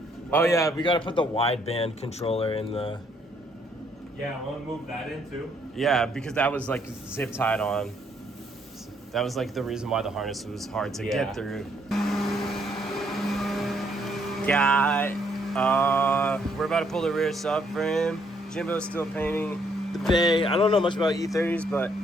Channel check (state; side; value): normal; both; correlation 0.69